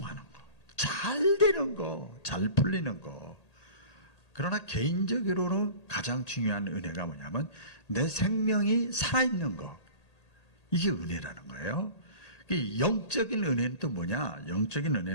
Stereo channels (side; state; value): right; late; 1.8 ms